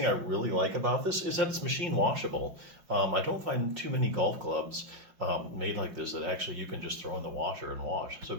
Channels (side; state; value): left; late; 5.7 ms